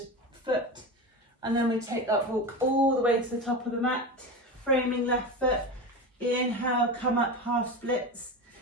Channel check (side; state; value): both; normal; correlation 0.24